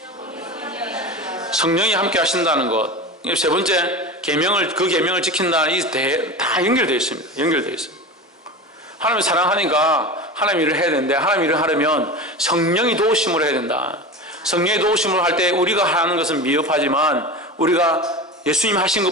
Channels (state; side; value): normal; both; correlation 0.29